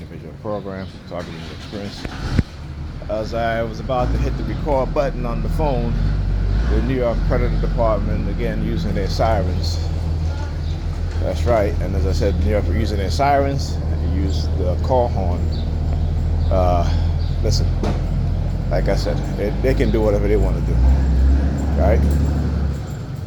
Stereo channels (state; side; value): identical; both; correlation 1.00